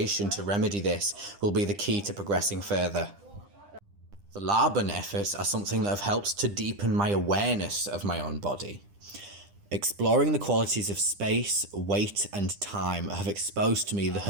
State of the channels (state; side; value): late; left; 10 ms